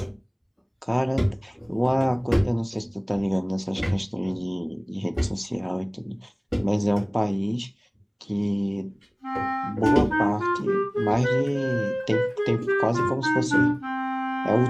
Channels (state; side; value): identical; both; correlation 1.00